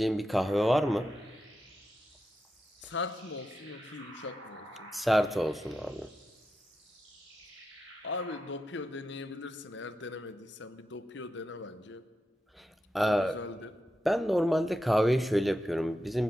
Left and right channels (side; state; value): both; normal; correlation 0.88